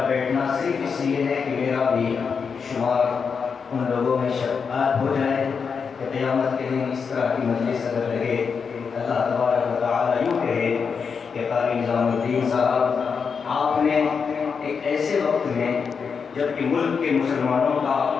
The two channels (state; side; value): quieter; right; 5.9 dB